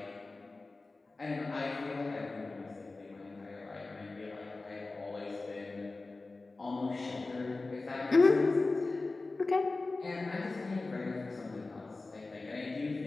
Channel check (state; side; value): quieter; right; 3.4 dB